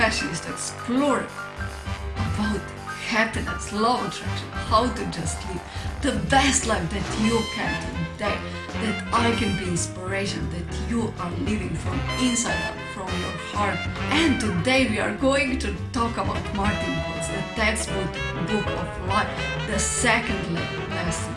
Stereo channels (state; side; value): identical; both; correlation 1.00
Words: is to explore about happiness, love attraction, how to just live the best life that you can today, that I can be inspiration, that you are living from inside out, from your heart. And today we are going to talk about Martin Kojc, the textbook of life, the second lesson.